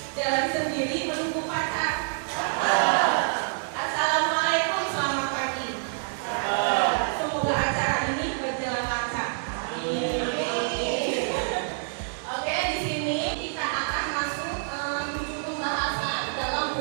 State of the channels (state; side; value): silent; left; digital silence